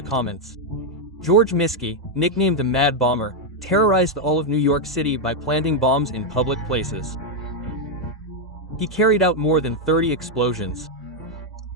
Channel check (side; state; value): both; normal; correlation 0.01